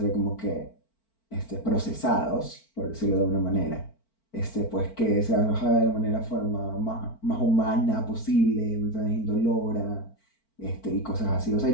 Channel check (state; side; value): late; right; 4.5 ms